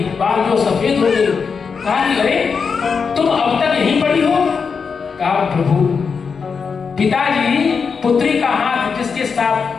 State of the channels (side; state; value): right; quieter; 5.6 dB